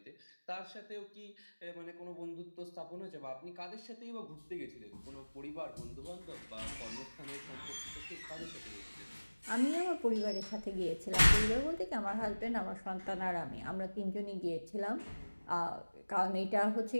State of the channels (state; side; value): inverted; both; correlation -1.00